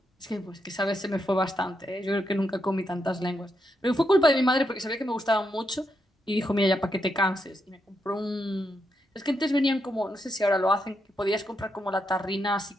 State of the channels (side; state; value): both; normal; correlation 0.82